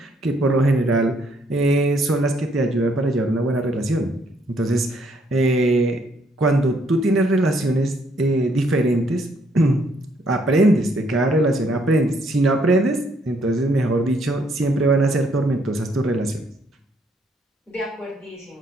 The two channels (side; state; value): both; normal; correlation 0.69